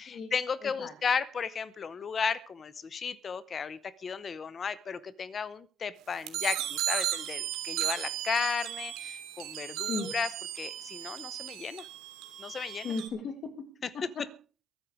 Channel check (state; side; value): normal; both; correlation 0.67